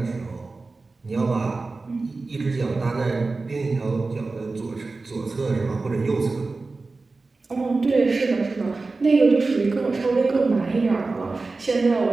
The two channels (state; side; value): quieter; left; 3.7 dB